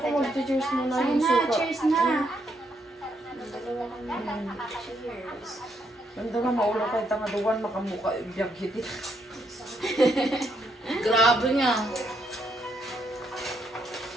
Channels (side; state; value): both; normal; correlation 0.76